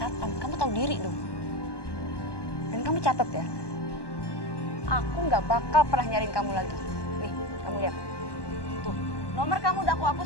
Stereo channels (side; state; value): right; late; 1.2 ms